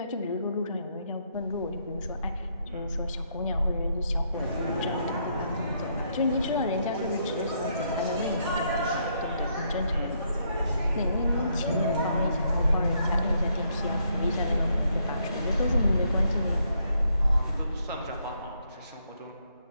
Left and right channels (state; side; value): inverted; both; correlation -0.74